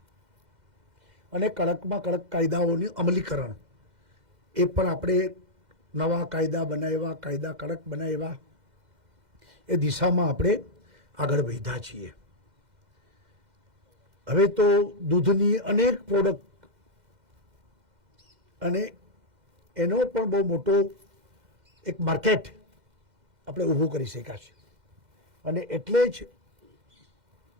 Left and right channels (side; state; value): left; late; 2.1 ms